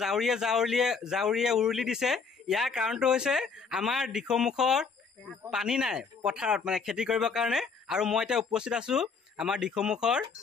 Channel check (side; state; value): right; quieter; 5.2 dB